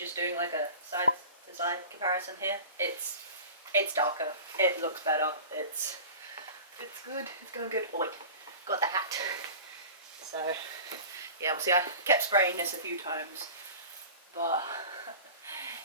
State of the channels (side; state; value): both; inverted; correlation -0.38